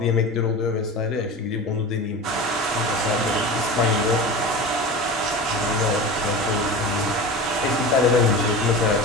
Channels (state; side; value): normal; both; correlation 0.31